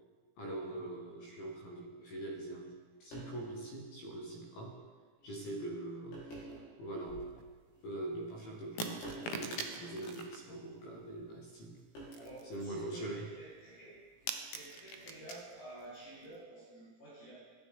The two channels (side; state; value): right; late; 18 ms